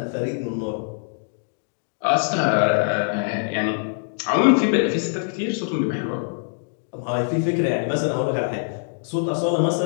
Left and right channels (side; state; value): right; silent; digital silence